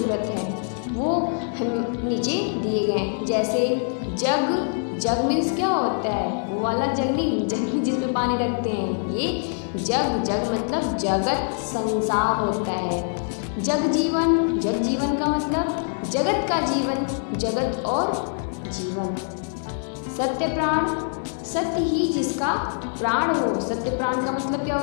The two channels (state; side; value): silent; right; 62 dB below the other